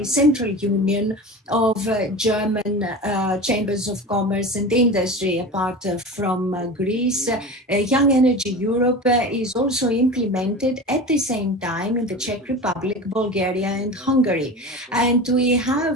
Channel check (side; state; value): both; normal; correlation 0.31